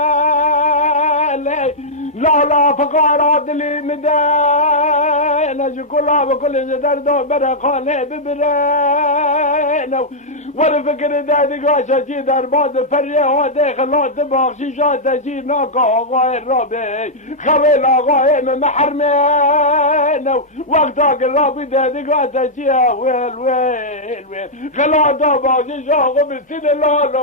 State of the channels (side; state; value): both; normal; correlation -0.08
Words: لا لا فقارات لي مدينة شكلها بكل جدردو برقاني ببرينو وانا فكر دادي قاشا جي درباد فريه ودي خلات باخشي شاتا جي ناكا آغاي الرابي خبيل آغاي من محرمينو وقتاك الرابي دادي قاشا جي ويل ويل ويل خلات باخشي شاغو بالسنة لا